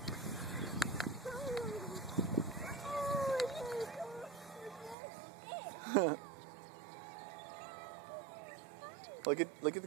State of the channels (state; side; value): drops out; left; at 5.0 s